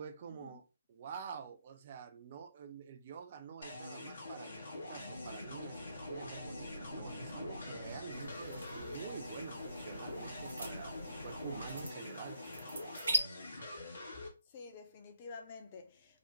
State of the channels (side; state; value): both; inverted; correlation -0.77